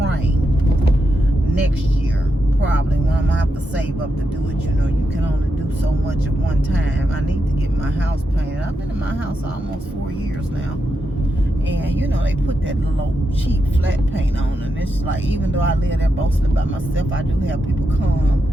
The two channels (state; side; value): normal; both; correlation 0.85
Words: next year, probably, when I'm gonna have to save up to do it. You can only do so much at one time. I need to get my house painted. I've been in my house almost 4 years now, and they put that little cheap flat paint on, and it's like, even though I live there mostly by myself, I do have people